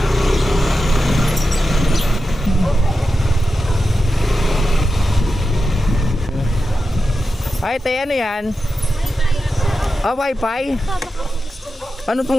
Ay, te, ano yan? Ah, Wi-Fi? Ano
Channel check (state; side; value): normal; both; correlation 0.91